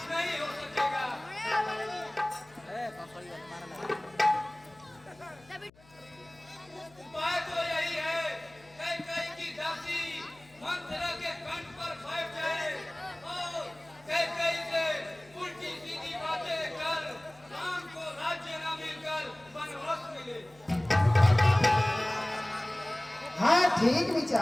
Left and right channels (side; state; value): left; noise; hum, 27 dB below the sound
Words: नहीं हो सकेगा। उपाय तो यही है, कैकेयी की दासी मंथरा के कंठ पर बैठ जाए और कैकेयी से उल्टी सीधी बातें कर राम को राज्य न मिलकर वनवास मिले। हाँ ठीक